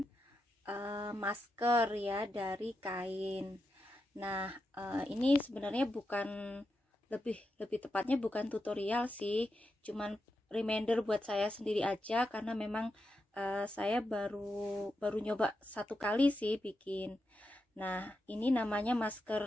masker ya dari kain. Nah, ini sebenarnya bukan lebih tepatnya bukan tutorial sih, cuman reminder buat saya sendiri aja karena memang saya baru nyoba satu kali sih bikin. Nah, ini namanya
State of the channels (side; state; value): both; normal; correlation 0.87